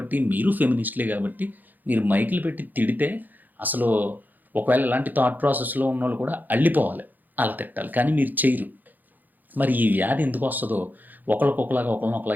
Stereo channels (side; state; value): left; late; 0.085 ms